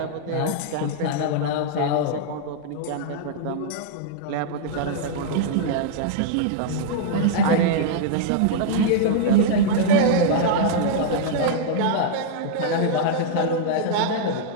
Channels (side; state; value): both; different; correlation -0.01